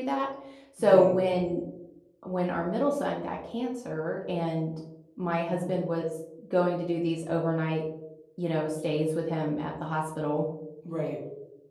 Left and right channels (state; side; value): identical; both; correlation 1.00